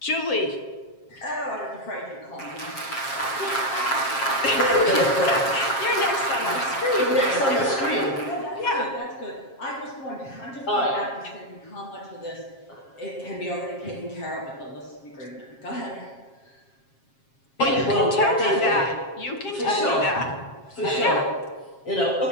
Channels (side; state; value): right; late; 7.4 ms